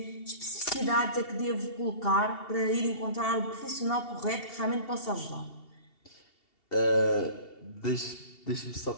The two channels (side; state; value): right; late; 2.7 ms